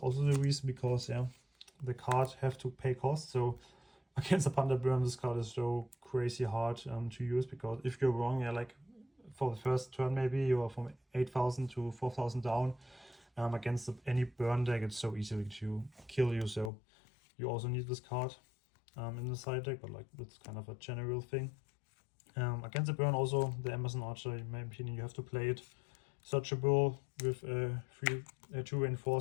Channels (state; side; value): drops out; right; at 16.7 s